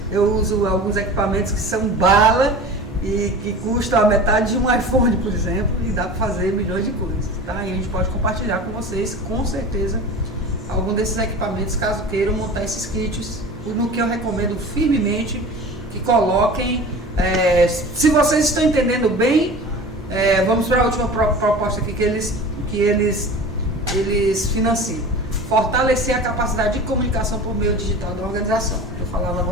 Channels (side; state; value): both; normal; correlation 0.36